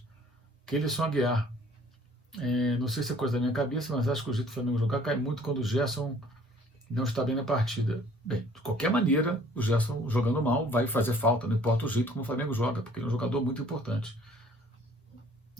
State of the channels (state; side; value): normal; both; correlation 0.56